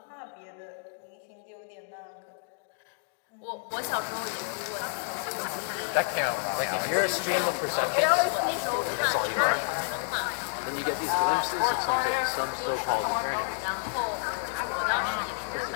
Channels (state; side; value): silent; right; digital silence